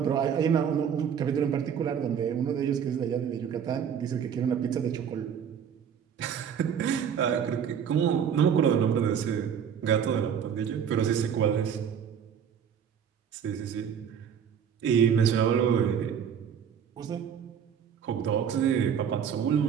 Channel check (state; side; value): quieter; left; 8.0 dB